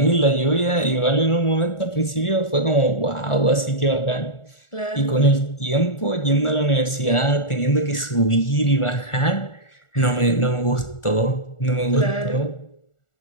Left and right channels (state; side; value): late; right; 1.4 ms